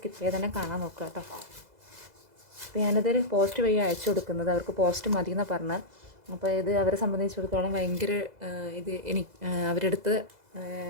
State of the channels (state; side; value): late; left; 2.0 ms